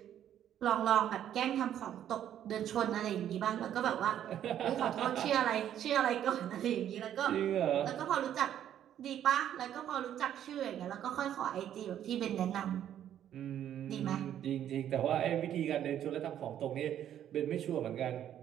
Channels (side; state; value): left; quieter; 10.6 dB